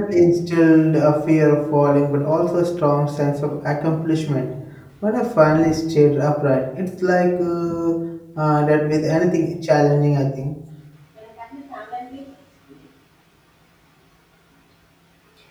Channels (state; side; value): identical; both; correlation 1.00